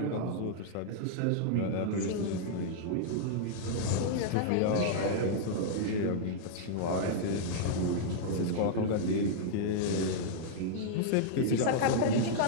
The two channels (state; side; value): different; both; correlation -0.01